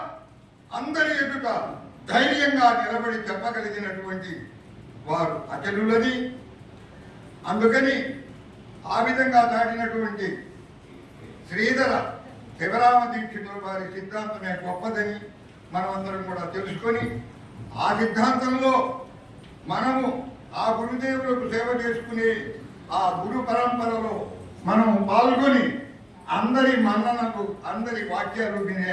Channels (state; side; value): identical; both; correlation 1.00